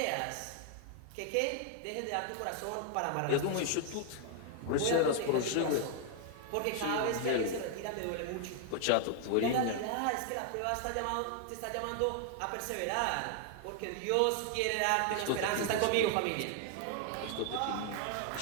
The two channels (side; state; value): both; different; correlation 0.00